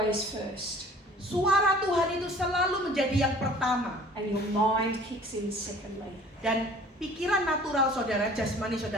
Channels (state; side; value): normal; both; correlation 0.49